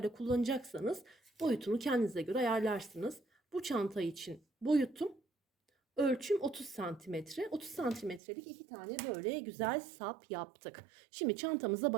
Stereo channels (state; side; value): drops out; left; at 8.2 s